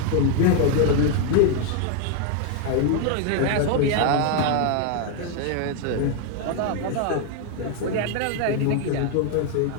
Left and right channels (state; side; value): different; both; correlation 0.00